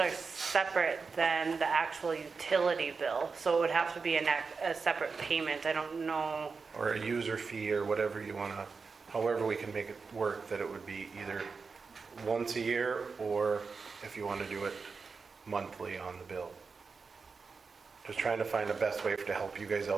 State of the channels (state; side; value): quieter; left; 4.8 dB